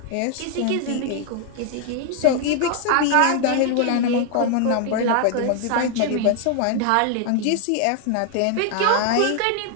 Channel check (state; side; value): different; both; correlation 0.00